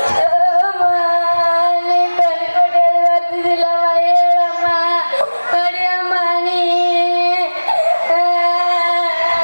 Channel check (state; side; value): inverted; both; correlation -1.00